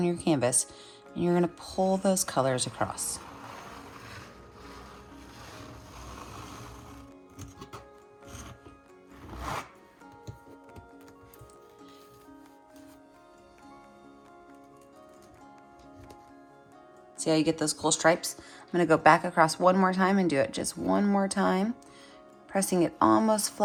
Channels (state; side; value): identical; both; correlation 1.00